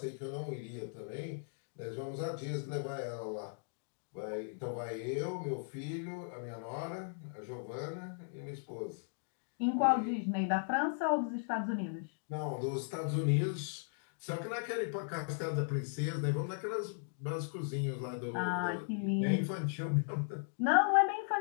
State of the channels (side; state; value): right; silent; digital silence